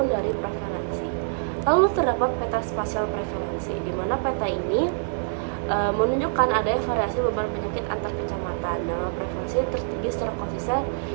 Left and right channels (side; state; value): left; silent; digital silence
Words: dari prevalensi. Lalu terdapat peta spasial prevalensi, di mana peta ini menunjukkan adanya variasi beban penyakit antar kecamatan. Nah, prevalensi tertinggi secara konsisten